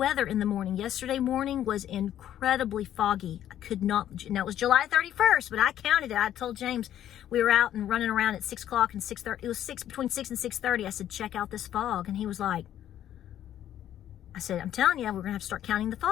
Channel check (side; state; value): right; quieter; 11.4 dB